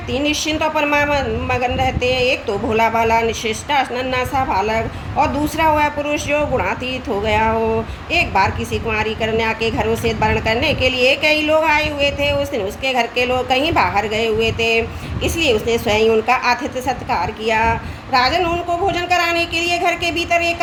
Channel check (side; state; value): both; identical; correlation 1.00